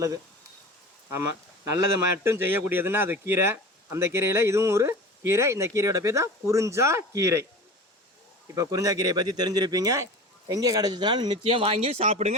ஆமாம், நல்லது மட்டும் செய்யக்கூடியதுன்னா அது கீரை. அந்த கீரையில் இதுவும் ஒரு கீரை. இந்த கீரையோட பேர் தான் குறிஞ்சா கீரை. இப்போ குறிஞ்சா கீரையை பற்றி தெரிஞ்சிருப்பீங்க. எங்கே கிடச்சிச்சுனாலும் நிச்சயம் வாங்கி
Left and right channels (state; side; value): normal; both; correlation 0.35